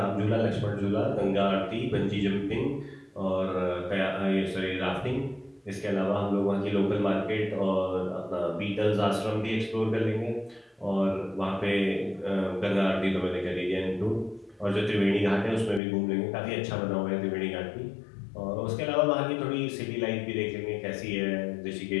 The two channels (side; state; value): right; drops out; at 15.8 s